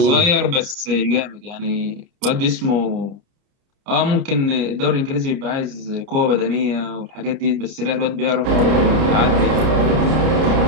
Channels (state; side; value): late; left; 30 ms